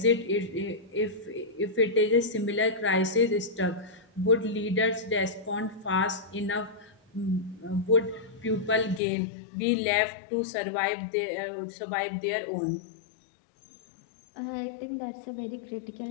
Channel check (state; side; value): drops out; right; at 9.0 s